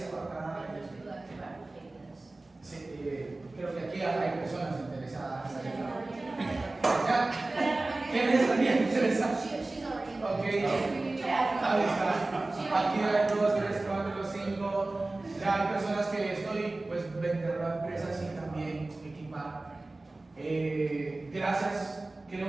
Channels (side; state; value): left; quieter; 3.0 dB